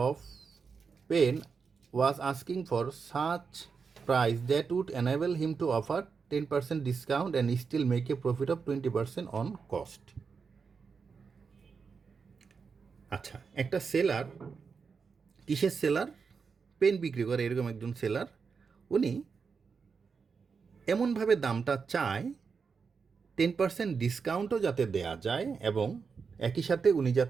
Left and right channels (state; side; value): quieter; left; 5.5 dB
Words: of pen was asking for such price that would enable him to offer 10% discount and still make a profit of 20% on cost. আচ্ছা, একটা সেলার, কিসের সেলার? পেন বিক্রি করে এরকম একজন সেলার। উনি এমনভাবে দামটা চায় 10% ডিসকাউন্টও যাতে দেয়া যায় এবং একই সাথে উনি